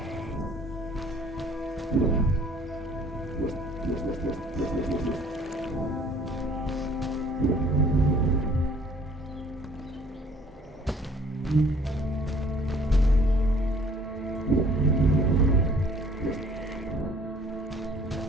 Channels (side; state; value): both; normal; correlation 0.56